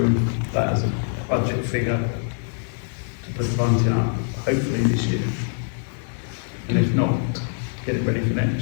that as a budget figure to put the bunting up, hopefully this year? And if not, get it ready for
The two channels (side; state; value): right; silent; 62 dB below the other